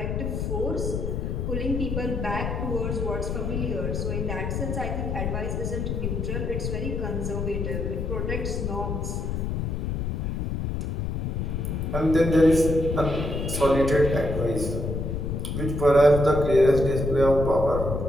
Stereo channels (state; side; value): noise; left; rumble, 2 dB below the sound